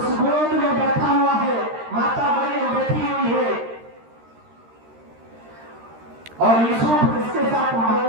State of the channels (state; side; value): late; left; 13 ms